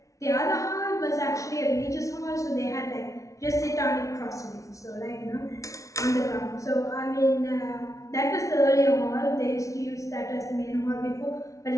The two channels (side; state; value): right; late; 0.16 ms